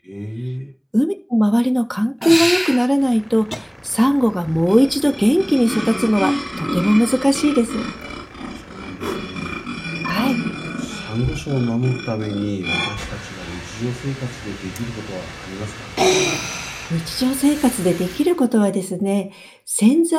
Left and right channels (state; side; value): identical; both; correlation 1.00